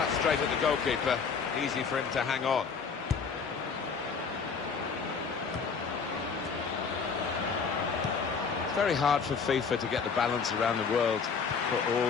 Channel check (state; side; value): quieter; right; 5.6 dB